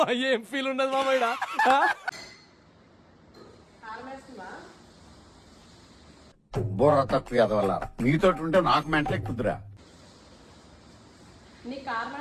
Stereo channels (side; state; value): both; identical; correlation 1.00